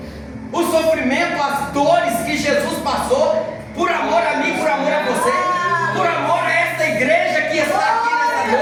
o sofrimento, as dores que Jesus passou por amor a mim, por amor a você, por amor a esta igreja que está aqui nessa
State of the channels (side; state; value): both; identical; correlation 1.00